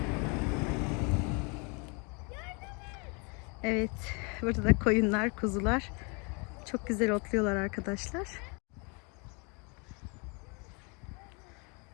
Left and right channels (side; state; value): right; quieter; 32.5 dB